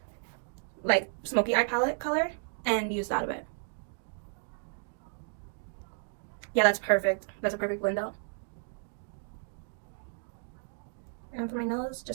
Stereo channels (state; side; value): silent; left; 56 dB below the other